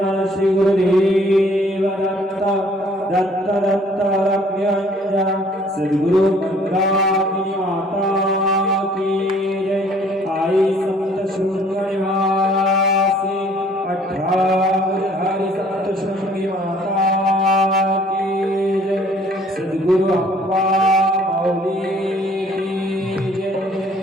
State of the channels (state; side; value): normal; both; correlation 0.57